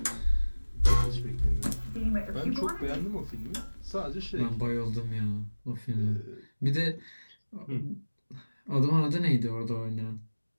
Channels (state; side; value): inverted; both; correlation -1.00